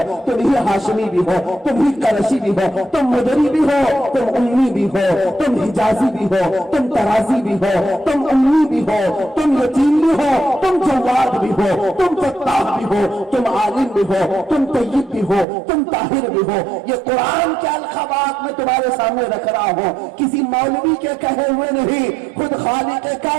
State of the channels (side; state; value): left; drops out; at 15.5 s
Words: تم ہی ہاشمی بھی ہو، تم ہی قریشی بھی ہو، تم مدری بھی ہو، تم امی بھی ہو، تم حجازی بھی ہو، تم ترازی بھی ہو، تم امی بھی ہو، تم یتیم بھی ہو، تم جواد بھی ہو، تم فتاح بھی ہو، تم عالم بھی ہو، تم طیب بھی ہو، تم طاہر بھی ہو۔ یہ قرآن کے الخبات میں تمہارے سامنے رکھ رہا ہوں، کسی مولوی کے کہے ہوئے نہیں، خود خالق